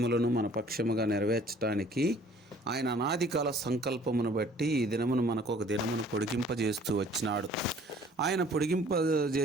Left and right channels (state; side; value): normal; both; correlation 0.55